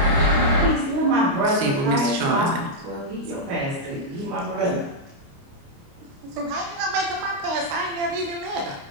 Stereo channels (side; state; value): left; late; 29 ms